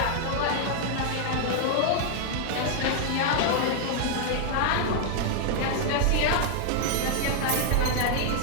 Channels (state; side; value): different; both; correlation 0.00